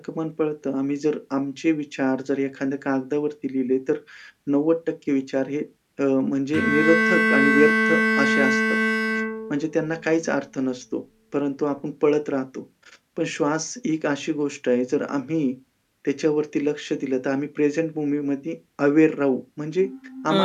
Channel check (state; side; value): identical; both; correlation 1.00